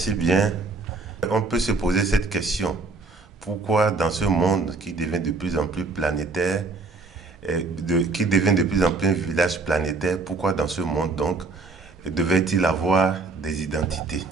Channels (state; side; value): quieter; left; 3.7 dB